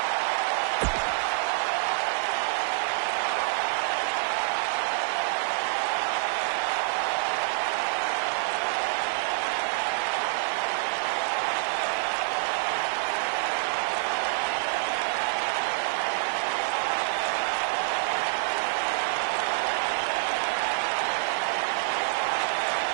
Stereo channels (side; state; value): left; silent; digital silence